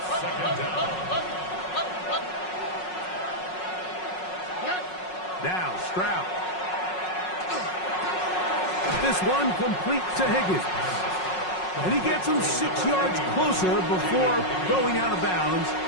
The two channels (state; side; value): late; right; 5.5 ms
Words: 2nd down. Now Stroud. This one complete to Higgins. And he gets him 6 yards closer before going out of bounds.